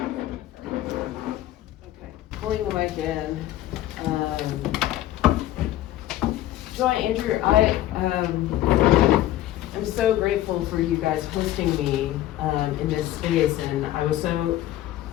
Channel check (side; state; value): right; quieter; 14.1 dB